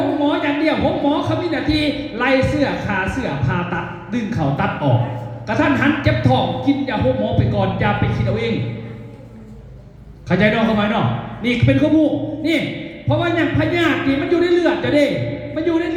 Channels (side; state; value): both; identical; correlation 1.00